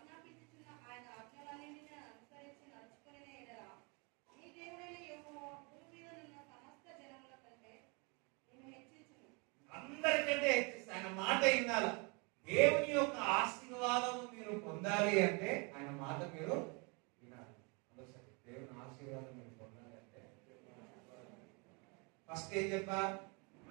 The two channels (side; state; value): left; quieter; 31.4 dB